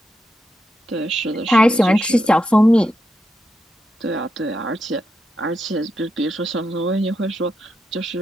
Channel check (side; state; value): both; normal; correlation 0.85